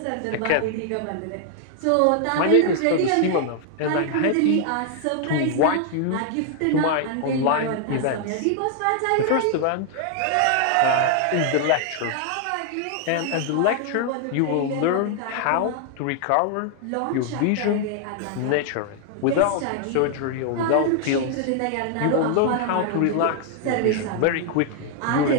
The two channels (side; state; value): both; different; correlation 0.00